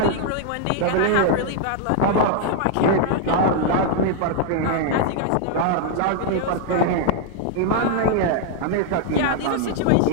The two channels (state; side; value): different; both; correlation 0.00